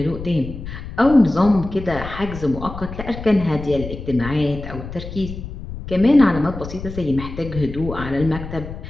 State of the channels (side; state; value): left; noise; rumble, 10 dB below the sound